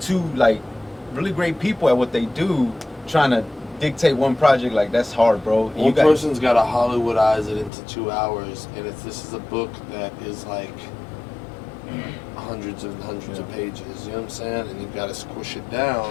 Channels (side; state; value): right; drops out; at 7.7 s